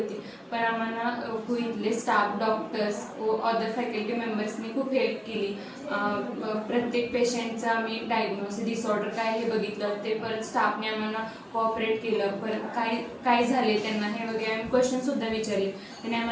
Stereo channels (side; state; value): both; identical; correlation 1.00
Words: पण आम्हाला इथले स्टाफ, डॉक्टर्स व अदर फॅकल्टी मेंबर्सनी खूप हेल्प केली. प्रत्येक पेशंटचं आम्ही डायग्नोसिस, डिसऑर्डर काय हे बघितलं, ते परत स्टाफने आम्हाला कोऑपरेट केलं. परत काय झाले त्यांना हे वगैरे आम्ही क्वेश्चनसुद्धा विचारले. त्यांनी